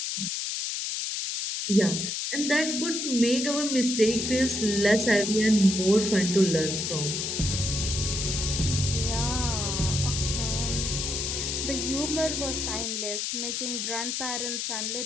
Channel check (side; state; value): left; noise; hiss, 2 dB below the sound